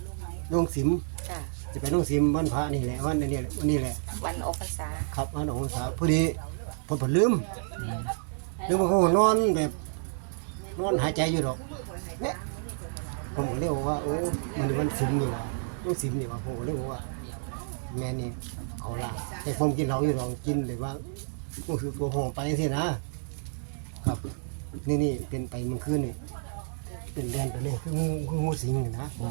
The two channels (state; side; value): silent; left; digital silence